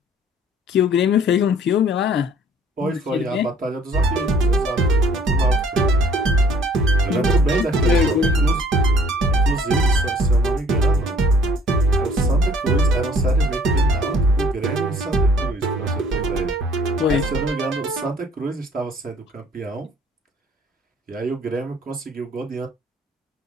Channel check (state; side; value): normal; both; correlation 0.57